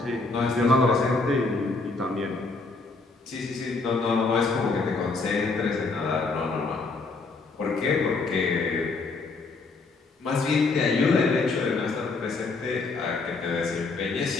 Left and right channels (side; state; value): right; quieter; 3.8 dB